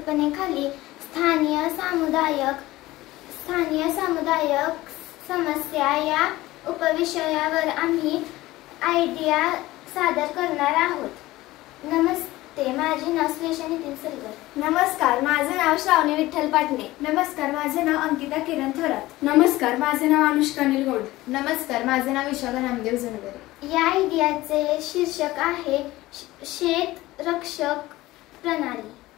स्थानीय सामुदायिक समस्या या उपविषयावर आम्ही आयडिया सादर करणार आहोत. नमस्ते, माझे नाव श्लेषा नितीन सलगर. नमस्कार, माझे नाव श्रावणी विठ्ठल पाटणे. नमस्कार, माझे नाव अंकिता किरण थोरात. नमस्कार, माझे नाव अनुष्का निलगोंड. नमस्कार, माझे नाव विशाखा नामदेव जनगरे. या आयडियाचे शीर्षक आहे शेत रक्षक प्रणाली.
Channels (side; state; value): right; quieter; 17.9 dB